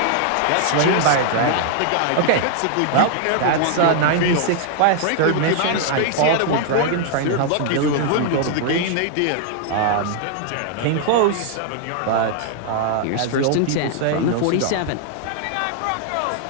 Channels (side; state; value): both; different; correlation 0.00